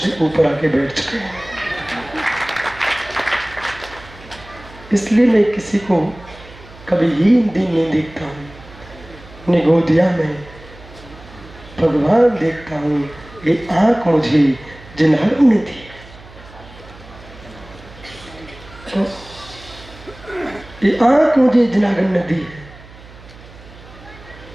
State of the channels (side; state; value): right; noise; hum, 20 dB below the sound